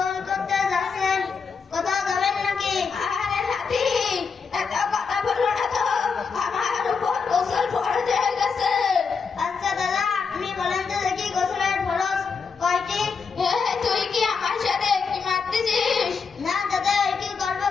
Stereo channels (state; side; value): quieter; right; 5.5 dB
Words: করতে যাচ্ছেন? কোথাও যাবেন নাকি? আরে নাতি এত কথা বলো না তো, আমার উপর গোসল ফরজ হয়ে গেছে। আচ্ছা দাদা আপনি বলেন তো দেখি গোসলের ফরজ কয়টি? তুই কি আমার সাথে কি মারতেছিস? না দাদা কি করবো